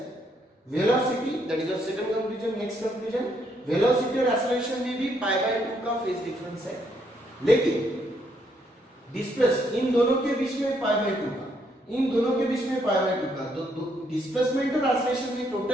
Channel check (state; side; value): normal; both; correlation 0.73